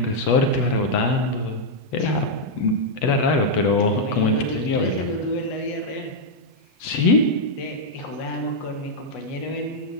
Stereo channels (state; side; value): late; right; 8.0 ms